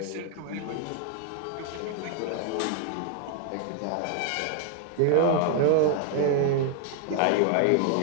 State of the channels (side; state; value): both; different; correlation 0.00